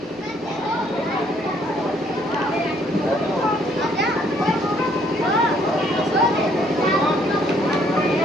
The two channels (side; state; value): right; noise; rumble, 30 dB below the sound